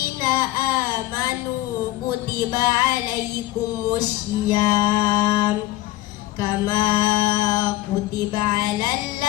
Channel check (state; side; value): quieter; right; 17.0 dB